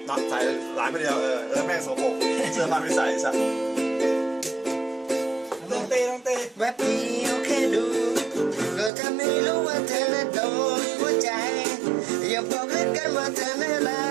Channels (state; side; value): drops out; left; at 8.9 s